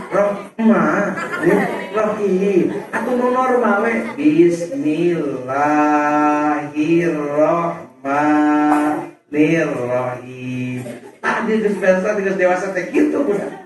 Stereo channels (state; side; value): identical; both; correlation 1.00